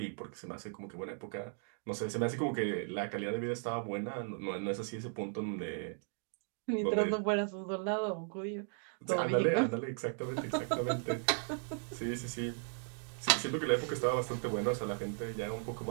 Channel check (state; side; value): silent; left; 53 dB below the other